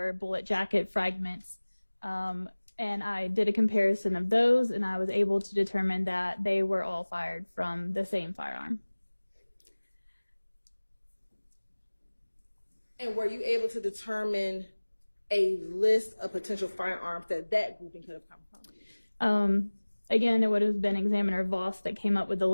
bullet jacket fragments. And I did a comparison of those, and I was able to determine that they were all fired from the same firearm. And were you able to determine a list of potential firearms that that grouping could have come from? Again, it would have been Examiner Voss that came up with the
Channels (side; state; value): both; inverted; correlation -1.00